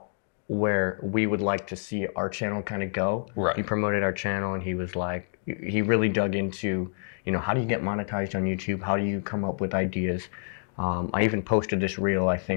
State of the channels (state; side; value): silent; right; digital silence